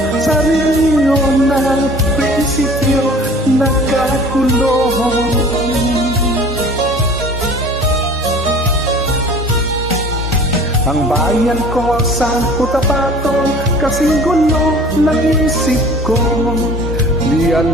sa rehiyon ng prinsipyo, nagkakulong. Ang bayan ko sa Cotabato, kasing gulo ng isip ko. Di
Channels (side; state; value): both; normal; correlation 0.46